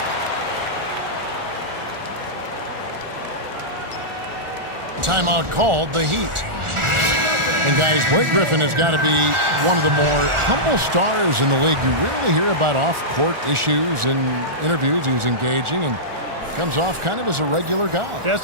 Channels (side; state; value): left; late; 1.4 ms